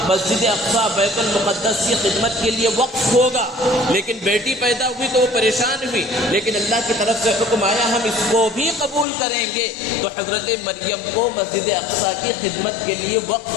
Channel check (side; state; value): right; drops out; at 9.1 s